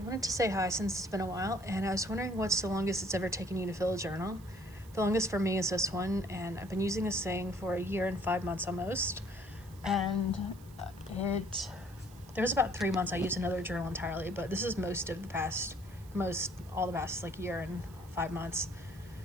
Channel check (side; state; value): right; noise; hiss, 24 dB below the sound